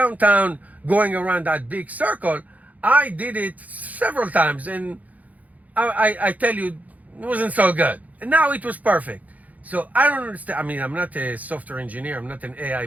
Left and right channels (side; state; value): left; late; 0.076 ms